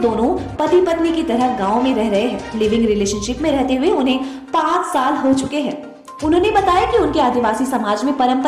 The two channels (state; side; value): identical; both; correlation 1.00